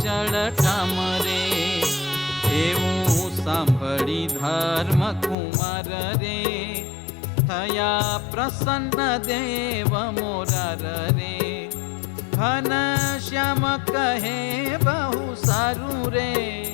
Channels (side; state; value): right; drops out; at 5.4 s